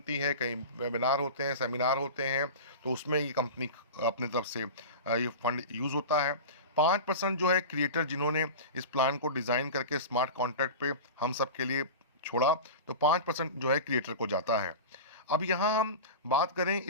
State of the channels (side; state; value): both; inverted; correlation -0.30